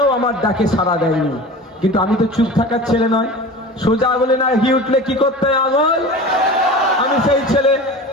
আমার ডাকে সাড়া দেয়নি। কিন্তু আমি তো চুপ থাকার ছেলে নয়, সোজা আঙুলে না ঘি উঠলে কি করতে হয় আঙুল। আমি সেই ছেলে,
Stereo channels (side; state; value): both; normal; correlation 0.35